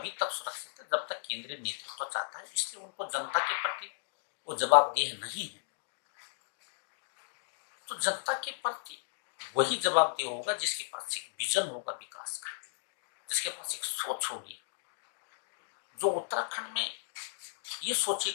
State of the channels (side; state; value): right; silent; digital silence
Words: तक सुरक्षित है जब तक केंद्रीय नेतृत्व चाहता है, इसलिए उनको जनता के प्रति वो जवाबदेह नहीं है। तो जनता के प्रति वही जवाबदेह होगा जिसके पास एक विजन होगा विकास का, जिसके पास एक सोच होगी, जो उत्तराखंड में ये